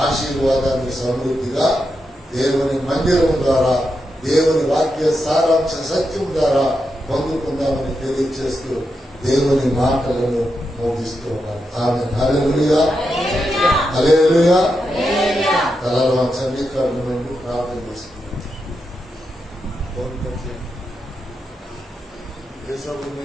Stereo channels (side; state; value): both; normal; correlation 0.86